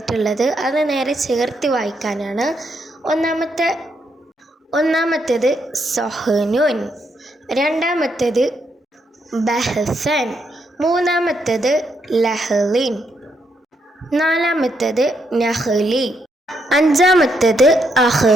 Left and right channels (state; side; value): normal; both; correlation 0.78